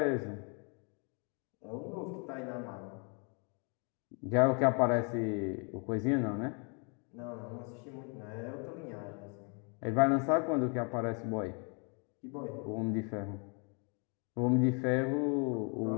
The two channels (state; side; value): quieter; right; 36.7 dB